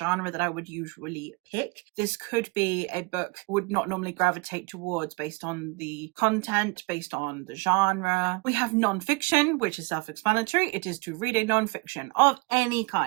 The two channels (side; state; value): left; quieter; 27.1 dB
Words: that I would usually pick. This could be a book I would not normally gravitate towards based on the content, based on the genre. We have non-fiction, which is self-explanatory. It is to read a non-fiction of any